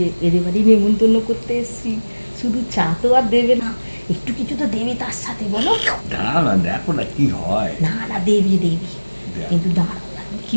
এদের বাড়ি নেমন্তন্ন করতে এসেছি। শুধু চা তো আর দেবে না, একটু কিছু তো দেবে তার সাথে, বলো। না দেখো না কি হয়। না না দেবে দেবে, কিন্তু দাঁড়াও কি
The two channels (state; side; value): inverted; both; correlation -1.00